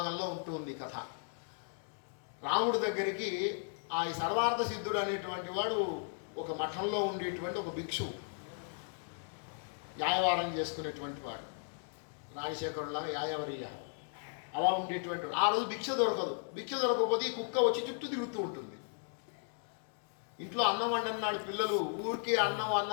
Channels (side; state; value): right; silent; 54 dB below the other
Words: ఉంటుంది ఈ కథ. రాముడి దగ్గరికి ఆ సర్వార్థ సిద్ధుడు అనేటువంటి వాడు ఒక మఠంలో ఉండేటువంటి ఒక భిక్షు, యాయవారం చేసుకునేటువంటి వాడు, రాజశేఖరులాగా యాయవరియ అలా ఉండేటువంటి వాడు. ఆ రోజు భిక్ష దొరకదు. భిక్ష దొరకకపోతే ఈ కుక్క వచ్చి చుట్టూ తిరుగుతూ ఉంటుంది. ఇంట్లో అన్నం వండన్నాడు, పిల్లలు ఊరికే అన్నం